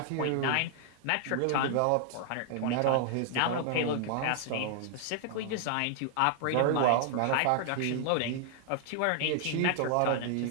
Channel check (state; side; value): different; both; correlation 0.00